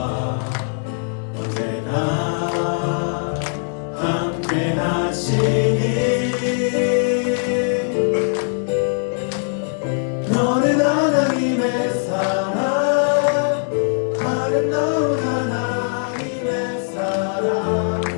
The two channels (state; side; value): silent; right; digital silence